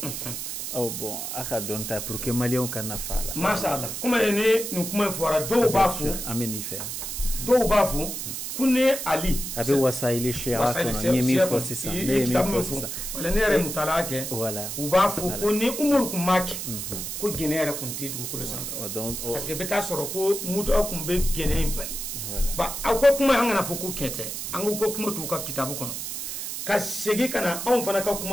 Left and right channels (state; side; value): noise; right; hiss, 5 dB below the sound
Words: Oh bon, aka donta pour que Malion kana fala. Mashallah. Comment est nous comment fora do bafu. Ameni fait. Do bafu kune Ali. Abe wasaili shira kono nyemi fosi sa. Nyemi fosi sa. Wala nere mutalake. Voilà. Ubafu kune umur kumaki. Ko genera kunti du ko le sanfa. Parce que beta soro ko muto akumbe gene impali. Ba ako kuma hangana foko kete. Ango ko kuma tu ka kitabu kono. Ka segi kana on fana ka